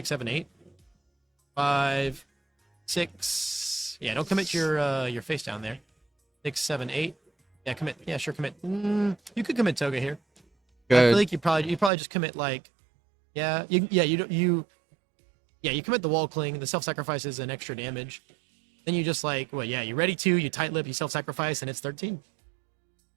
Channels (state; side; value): drops out; left; at 11.9 s